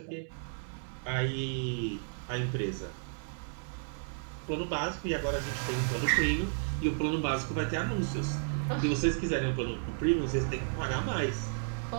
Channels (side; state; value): left; silent; 56 dB below the other